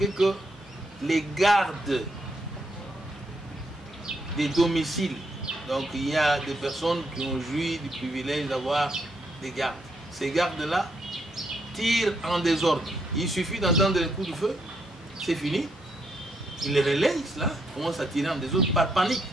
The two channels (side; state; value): both; normal; correlation 0.76